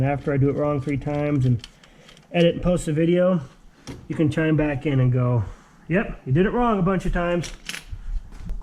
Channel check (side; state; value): both; identical; correlation 1.00